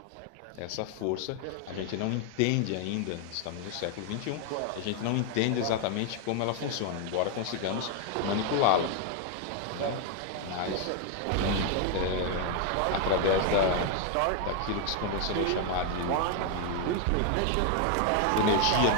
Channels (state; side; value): different; both; correlation 0.00